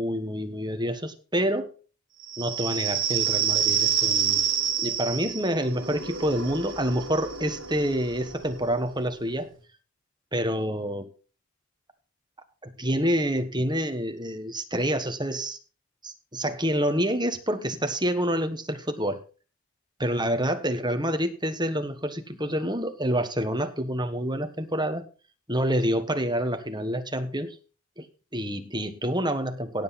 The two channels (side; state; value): both; normal; correlation 0.51